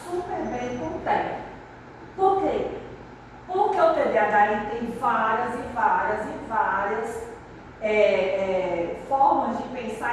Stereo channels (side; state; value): both; identical; correlation 1.00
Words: super bem com o TEA. Por quê? Porque o TDAH ele tem várias formas de